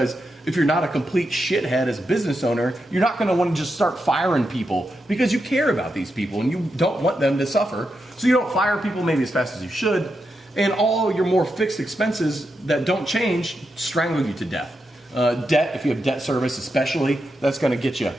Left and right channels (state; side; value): normal; both; correlation 0.86